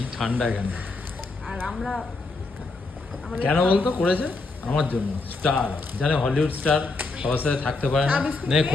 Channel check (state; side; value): quieter; right; 3.6 dB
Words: ঠান্ডা এখানে। আর আমরা কেন বলতো করেছে? আমার জন্য, স্টার জানে, হলিউড স্টার সবার সাথে থাকতে পারে না। নে